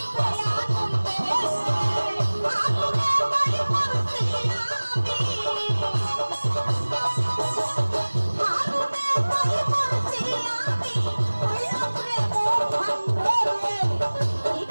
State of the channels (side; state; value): both; inverted; correlation -1.00